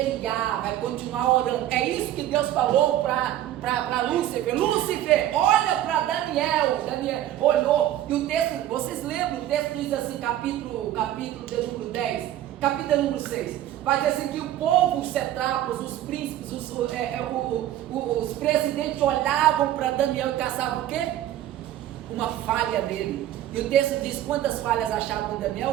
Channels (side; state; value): left; quieter; 12.7 dB